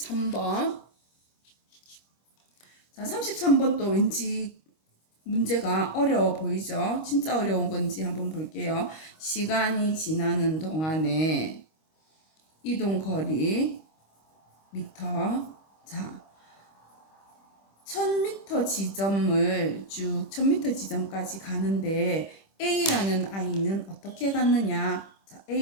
자, 33번 또 왠지 문제가 어려워 보이죠? 진짜 어려운 건지 한번 볼게요. 시간이 지나는 동안에 이동 거리 미터. 자, 1000m 지점을 쭉 1000m 지점까지 가는데 A라는 아이는 어떻게 갔느냐? 자,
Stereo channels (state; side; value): late; right; 25 ms